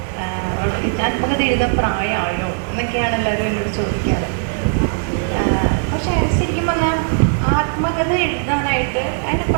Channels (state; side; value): silent; left; 67 dB below the other